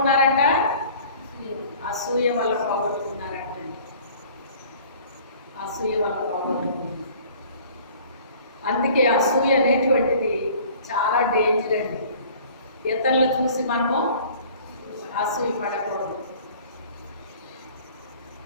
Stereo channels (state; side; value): inverted; both; correlation -0.49